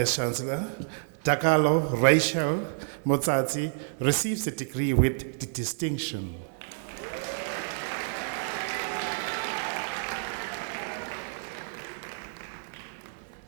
Chancellor, Dakalo Rachel Motsatsi receives a degree with distinction.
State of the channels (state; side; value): silent; left; 57 dB below the other